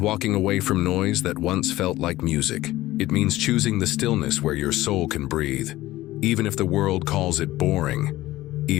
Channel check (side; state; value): right; quieter; 16.7 dB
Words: away from noise that once felt like music. It means choosing the stillness where your soul can breathe. Even if the world calls it boring,